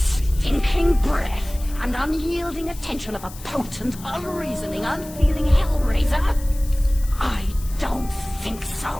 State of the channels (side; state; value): left; noise; hiss, 17 dB below the sound